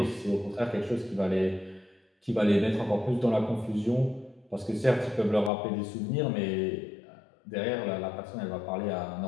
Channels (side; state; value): right; drops out; at 5.5 s